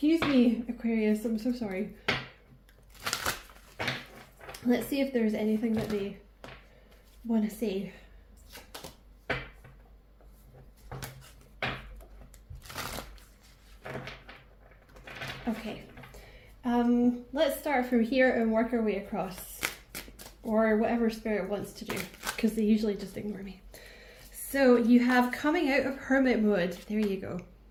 me, Aquarius, I'm so sorry. Let's see if there's anything that they want to say. Okay, let's start from here and work our way across, or whatever Spirit wants to do, because they usually just ignore me. So you have coming out of hermit mode. There you go.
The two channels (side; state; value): both; identical; correlation 1.00